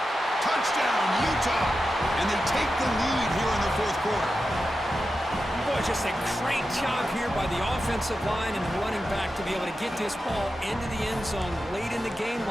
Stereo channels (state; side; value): normal; both; correlation 0.91